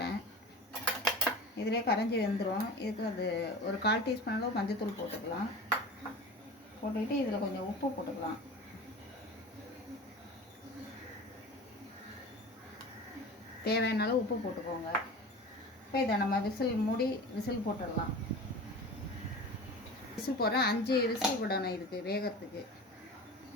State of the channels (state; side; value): normal; both; correlation 0.35